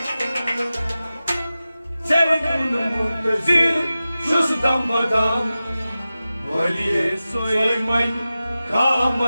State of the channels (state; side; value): inverted; both; correlation -0.95